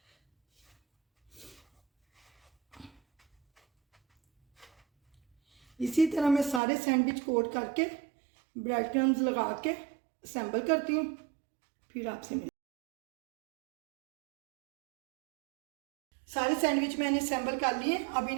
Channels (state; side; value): drops out; left; at 6.6 s